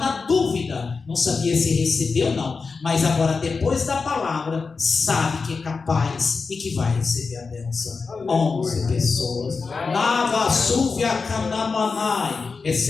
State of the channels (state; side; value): quieter; right; 4.6 dB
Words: dúvida, não sabia se recebeu ou não, mas agora depois da palavra sabe que é capaz e que vai receber a bênção. 11 pessoas. Nava Súvia Canamanai,